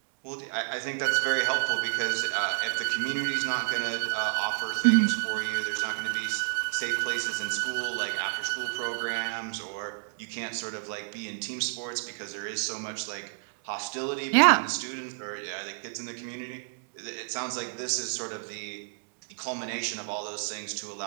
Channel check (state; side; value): silent; left; digital silence